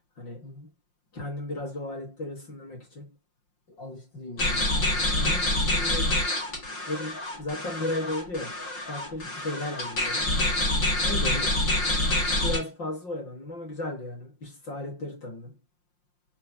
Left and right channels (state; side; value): late; right; 5.6 ms